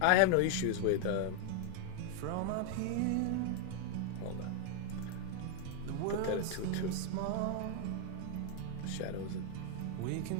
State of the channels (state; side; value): different; both; correlation 0.00